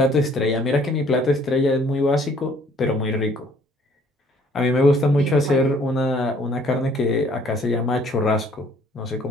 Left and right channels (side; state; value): both; normal; correlation 0.59